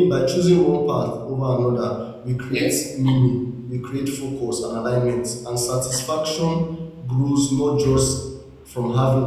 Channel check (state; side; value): identical; both; correlation 1.00